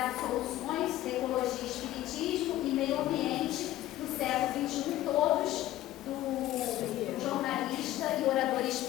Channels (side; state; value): right; quieter; 14.4 dB